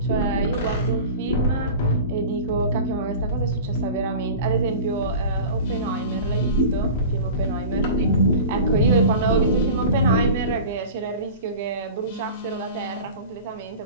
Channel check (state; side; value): inverted; both; correlation -0.36